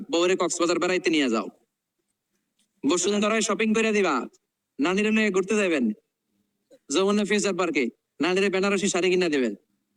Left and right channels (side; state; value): both; identical; correlation 1.00